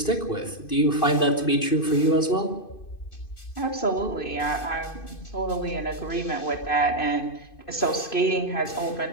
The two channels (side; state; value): right; late; 2.5 ms